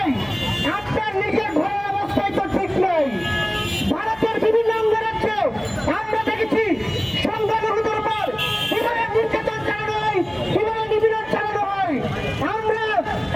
আপনার নিজের ঘরের অবস্থায় তো ঠিক নেই। ভারতের বিভিন্ন অঙ্গরাজ্যে আমরা দেখেছি সংখ্যালঘুদের উপর কিভাবে নির্যাতন চালানো হয়, কিভাবে নিপীড়ন চালানো হয়। আমরা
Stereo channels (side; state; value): right; noise; hum, 24 dB below the sound